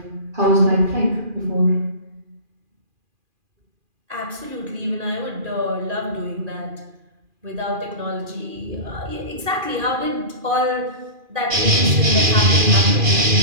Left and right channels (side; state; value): left; late; 2.4 ms